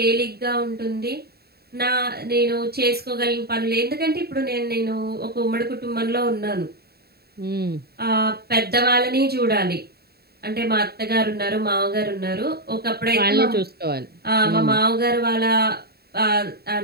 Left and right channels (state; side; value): late; left; 0.46 ms